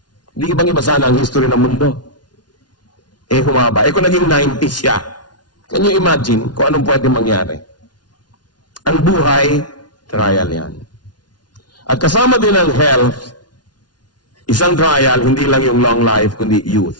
di ibang iba sana ang history ng mundo. Humaba. Kung naging 90 siya, can you imagine kung anong pwede mangyari? Ang buhay, trial yan. At kasama din ang health, isang trial, hindi lang yung long life, kundi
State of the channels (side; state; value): right; late; 0.70 ms